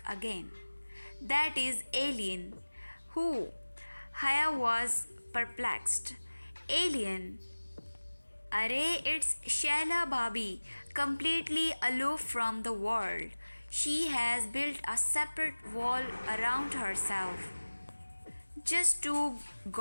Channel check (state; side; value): inverted; both; correlation -1.00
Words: again. That is Alien. Who? Haya was perplexed. Alien. Arey, it's Shaila Bhabi, completely aloof from the world. She has built a separate wall around herself. Just to